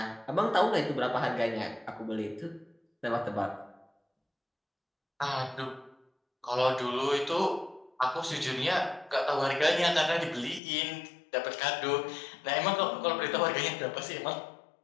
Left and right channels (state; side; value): drops out; right; at 10.6 s